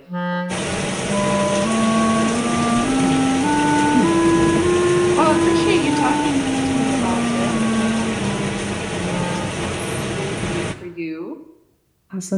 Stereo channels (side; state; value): both; identical; correlation 1.00